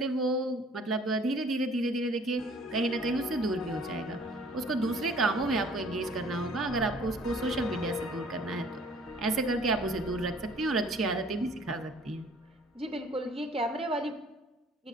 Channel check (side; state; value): both; normal; correlation 0.54